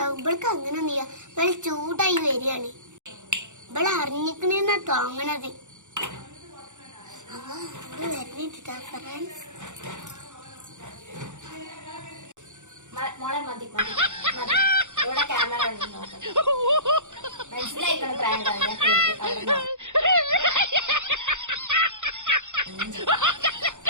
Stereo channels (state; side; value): late; left; 0.85 ms